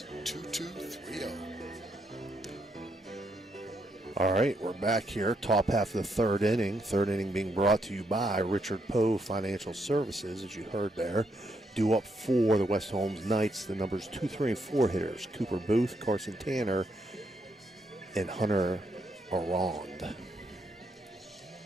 All right, we're back here, top half of the third inning. Third inning being brought to you by Richard Poe Financial Services, as you heard there. Due up for the West Holmes Knights, the numbers 2, 3, and 4 hitters, Cooper Booth, Carson Tanner, and Hunter Arond.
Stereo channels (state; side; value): normal; both; correlation 0.77